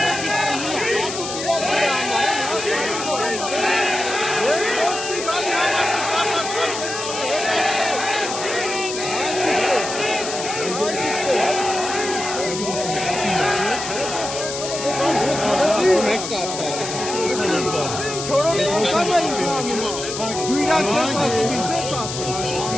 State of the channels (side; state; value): left; noise; hiss, 6 dB below the sound